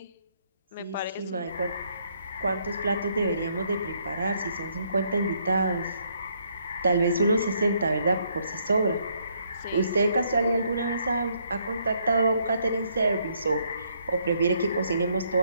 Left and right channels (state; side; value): inverted; both; correlation -0.71